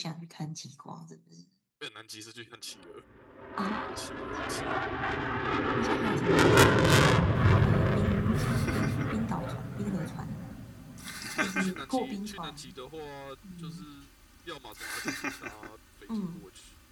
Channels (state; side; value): identical; both; correlation 1.00